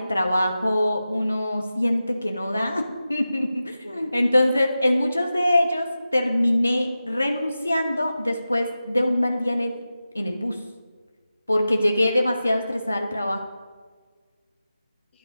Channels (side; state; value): both; inverted; correlation -0.93